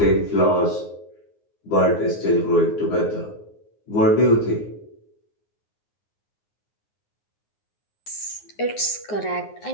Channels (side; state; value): right; late; 9.5 ms